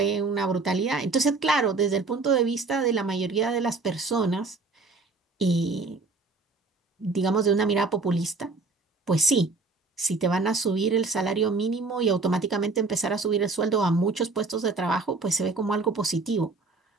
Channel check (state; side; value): quieter; left; 3.8 dB